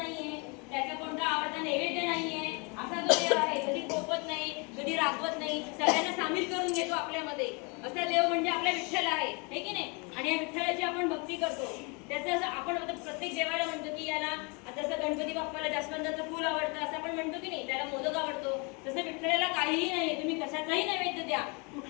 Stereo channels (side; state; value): right; quieter; 31.4 dB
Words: त्याचा कोणता आवडता नैवेद्य नाहीये. असा जो देव आहे, कधी कोपत नाही, कधी रागवत नाही, सगळ्यांना सामील करून घेतो आपल्यामध्ये. असा देव म्हणजे आपला विठ्ठल आहे, हे की नाही. आणि या विठ्ठलाची आपण भक्ती करतो. त्याचं आपण प्रत्येक देवाला म्हणतो की याला आता जसं गणपती बाप्पाला जास्वंदाचं फूल आवडतं असं आपण म्हणतो की नाही, त्याला मोदक आवडतो. तसं विठ्ठलाला काहीही नाही, तुम्ही कशाचाही नैवेद्य द्या,